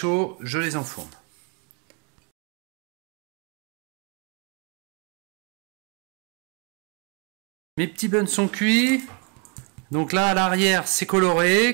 je les enfourne. Mes petits buns sont cuits. Donc là, à l'arrière, c'est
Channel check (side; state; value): left; quieter; 34.6 dB